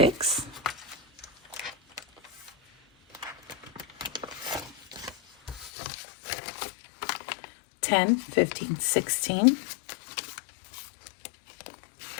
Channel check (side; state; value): right; drops out; at 5.7 s